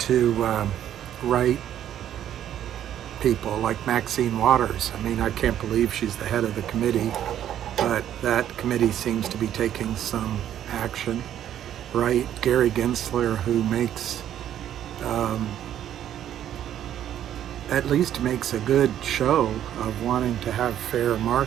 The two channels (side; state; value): left; quieter; 10.9 dB